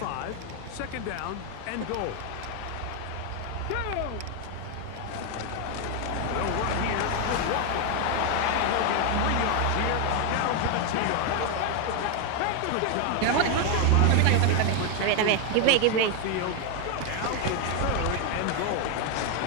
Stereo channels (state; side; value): different; both; correlation 0.01